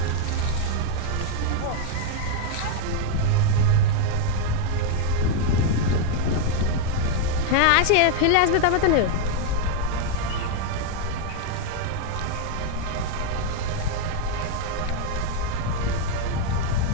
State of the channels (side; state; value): both; different; correlation 0.00